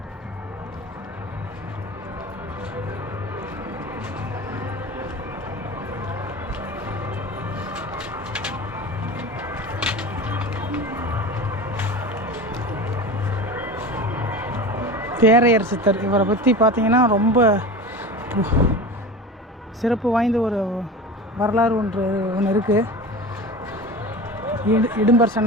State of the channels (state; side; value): normal; both; correlation 0.31